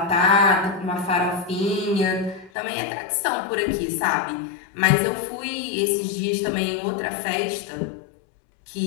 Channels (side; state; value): right; drops out; at 2.5 s